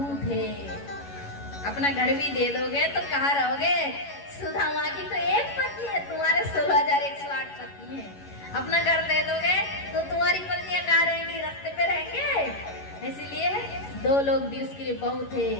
है, अपना घर भी दे दोगे तो कहाँ रहोगे? सुदामा की तो एक पत्नी है, तुम्हारे 16,108 पत्नी है, अपना घर दे दोगे तो तुम्हारी पत्नियां कहाँ रहेंगी, रास्ते पे रहेंगे, इसलिए 2 लोग भी उसके लिए बहुत है,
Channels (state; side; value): late; right; 11 ms